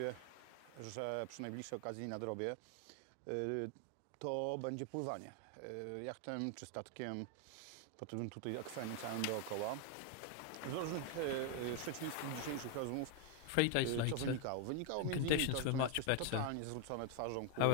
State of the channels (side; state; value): both; different; correlation 0.00